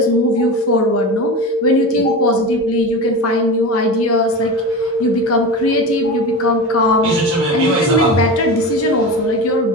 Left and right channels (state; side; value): normal; both; correlation 0.26